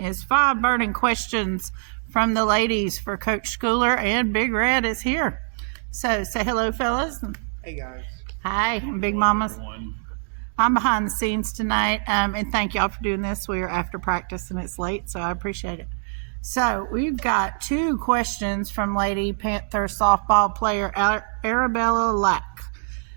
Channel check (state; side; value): silent; left; 60 dB below the other